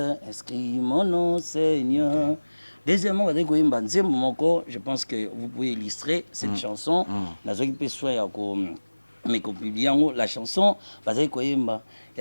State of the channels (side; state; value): both; inverted; correlation -1.00